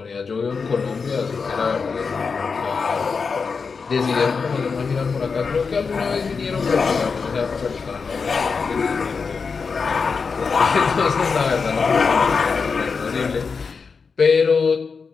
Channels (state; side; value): quieter; right; 5.2 dB